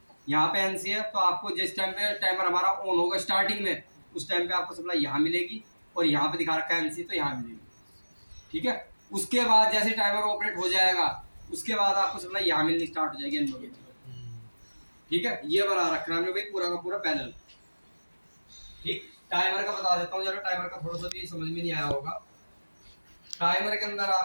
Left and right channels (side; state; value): both; inverted; correlation -1.00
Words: यहाँ पे NC है, तो आपको जिस टाइम पे टाइमर हमारा ऑन होगा स्टार्टिंग में, उस टाइम पे आपको सप्लाई यहाँ मिलेगी, और यहाँ पे दिखा रखा है NC, तो यहाँ मिलेगी। ठीक है, उसके बाद जैसे टाइमर ऑपरेट हो जाएगा, उसके बाद आपको सप्लाई यहाँ मिलनी स्टार्ट हो जाएगी NO की। ठीक है, ये बना रखना हमने भाई पूरा का पूरा पैनल। ठीक, टाइमर का बता देता हूँ जरा, टाइमर का थोड़ा सा भी समझ में नहीं आया होगा। टाइमर के अंदर